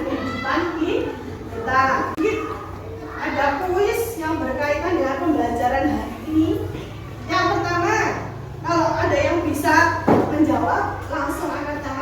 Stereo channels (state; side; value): identical; both; correlation 1.00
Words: kehidupan kita. Ada kuis yang berkaitan dengan pembelajaran hari ini. Yang pertama, kalau ada yang bisa menjawab langsung angkat